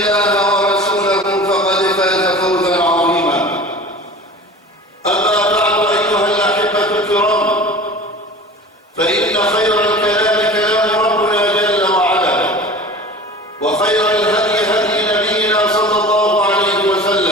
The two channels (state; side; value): normal; both; correlation 0.39